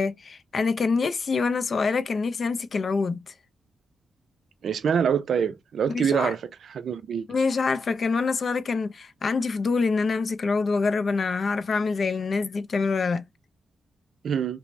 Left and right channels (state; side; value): normal; both; correlation 0.84